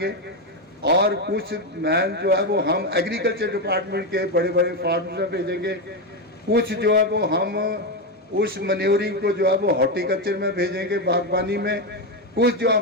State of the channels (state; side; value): normal; both; correlation 0.09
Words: और कुछ मैन जो है वो हम एग्रीकल्चर डिपार्टमेंट के बड़े बड़े फार्म्स में भेजेंगे, कुछ जो है वो हम उस मन्योरिंग को जो है वो हॉर्टिकल्चर में भेजेंगे, बागबानी में, कुछ जो